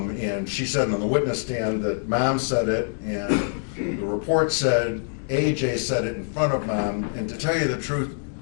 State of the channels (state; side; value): silent; right; digital silence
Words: she said on the witness stand that Mom said it, and the report said AJ said it in front of Mom. And to tell you the truth,